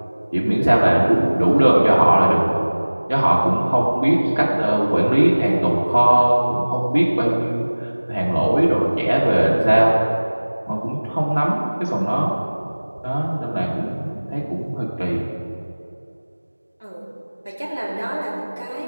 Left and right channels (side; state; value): both; inverted; correlation -1.00